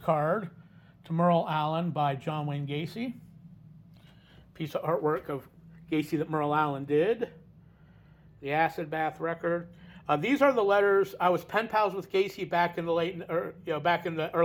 to Merle Allen by John Wayne Gacy. Piece of artwork of Gacy that Merle Allen did. The acid bath record. These are the letters. I was pen pals with Gacy back in the back in the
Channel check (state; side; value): identical; both; correlation 1.00